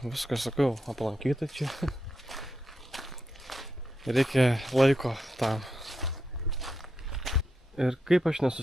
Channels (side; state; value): both; normal; correlation 0.85